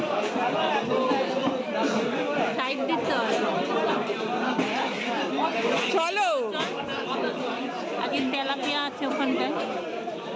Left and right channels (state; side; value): identical; both; correlation 1.00